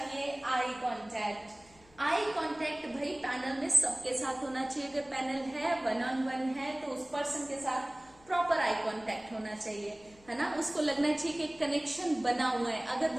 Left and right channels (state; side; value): noise; left; hum, 27 dB below the sound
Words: आई कॉन्टेक्ट भाई पैनल में सबके साथ होना चाहिए, अगर पैनल है 1-on-1 है तो उस पर्सन के साथ प्रॉपर आई कांटेक्ट होना चाहिए, है ना, उसको लगना चाहिए कि कनेक्शन बना हुआ है। अगर